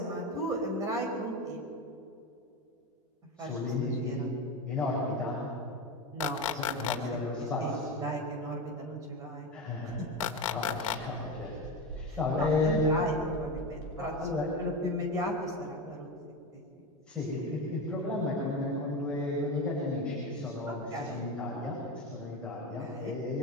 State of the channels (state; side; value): normal; both; correlation 0.19